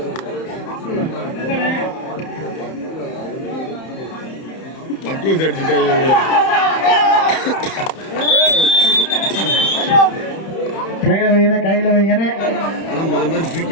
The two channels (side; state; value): right; late; 31 ms